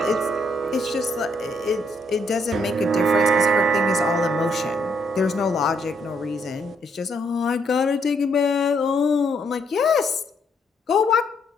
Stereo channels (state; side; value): normal; both; correlation 0.72